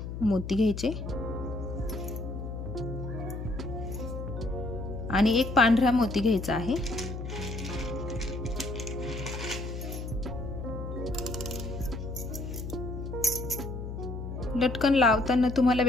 मोती घ्यायचे आणि एक पांढरा मोती घ्यायचा आहे. लटकन लावताना तुम्हाला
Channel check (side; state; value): left; noise; hum, 6 dB below the sound